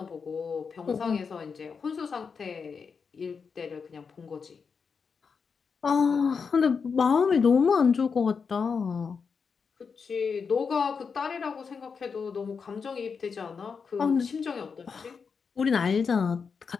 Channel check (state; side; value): quieter; right; 5.7 dB